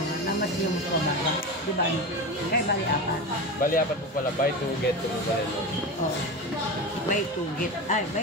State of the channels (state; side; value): normal; both; correlation 0.24